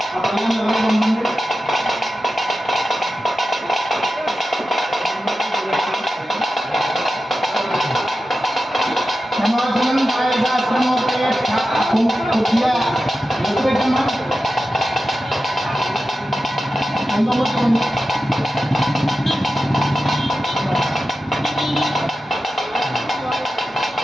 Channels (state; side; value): normal; both; correlation 0.92